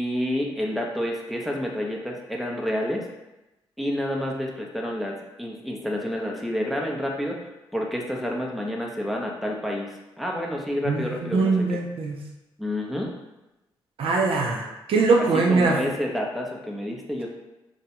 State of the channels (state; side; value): normal; both; correlation 0.75